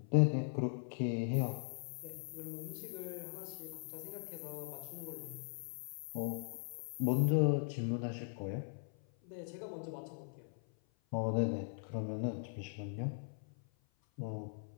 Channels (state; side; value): silent; right; 51 dB below the other